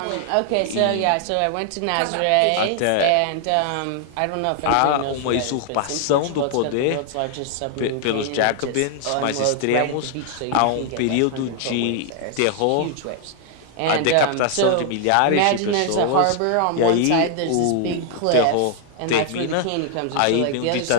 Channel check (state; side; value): different; both; correlation 0.00